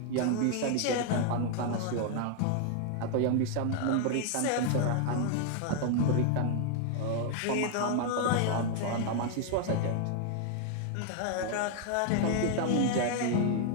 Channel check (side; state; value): both; different; correlation 0.00